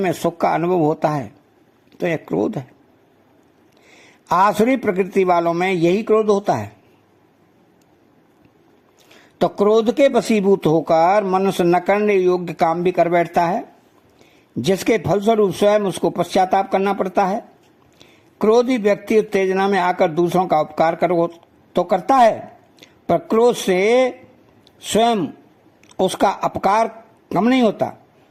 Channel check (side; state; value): both; identical; correlation 1.00